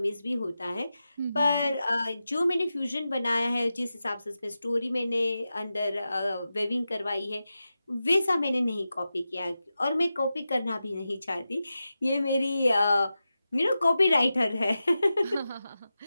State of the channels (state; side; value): inverted; both; correlation -0.92